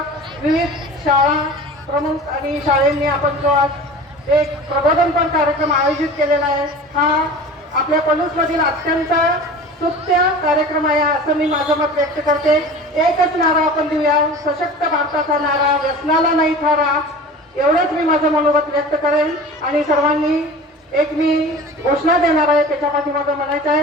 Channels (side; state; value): both; normal; correlation 0.38